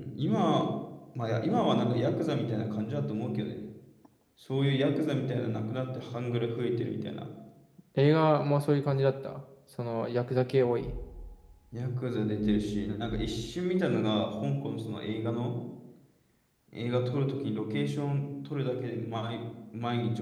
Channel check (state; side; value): identical; both; correlation 1.00